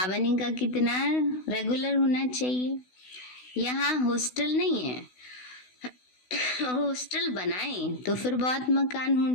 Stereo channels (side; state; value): right; late; 16 ms